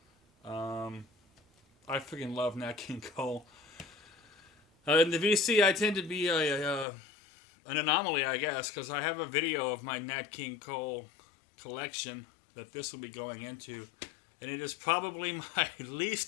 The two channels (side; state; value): right; drops out; at 6.9 s